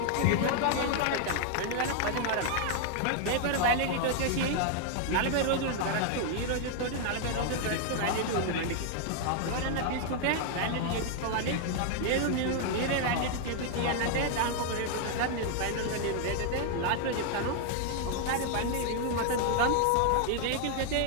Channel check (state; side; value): different; both; correlation 0.00